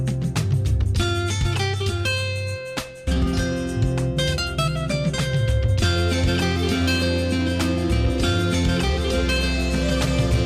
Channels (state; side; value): identical; both; correlation 1.00